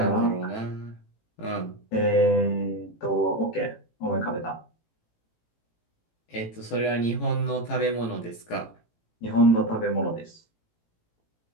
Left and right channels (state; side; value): late; right; 18 ms